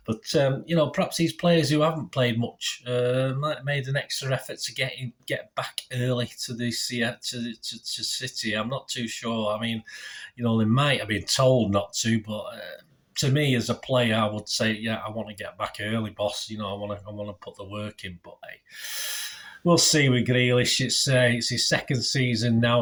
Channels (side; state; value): both; identical; correlation 1.00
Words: But perhaps these players who haven't played much might have made an extra effort to get back early to the to City. I'm not too sure. I mean, they might have been told not to, but. To me, as a player, I would say, yeah, I want to get back early, boss. I want to put the work in, but hey. We'll see with Grealish. It's his second season